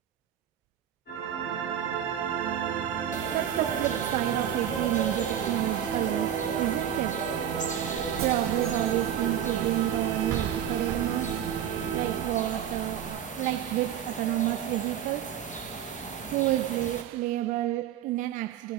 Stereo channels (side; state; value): left; quieter; 10.0 dB